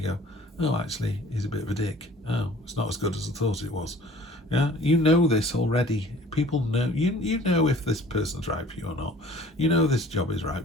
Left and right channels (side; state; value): both; normal; correlation 0.50